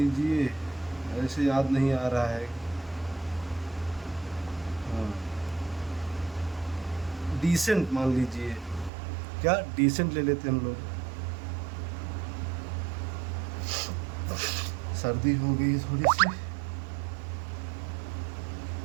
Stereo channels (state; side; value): drops out; left; at 8.9 s